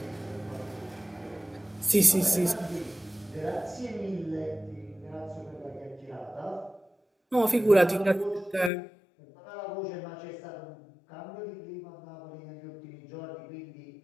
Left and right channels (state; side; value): drops out; right; at 8.7 s